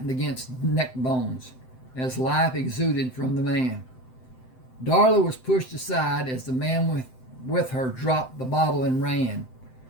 against neck bones as life exuded from the man. Darla was pushed aside as the man with her dropped the bottle and ran.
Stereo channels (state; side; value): late; right; 7.8 ms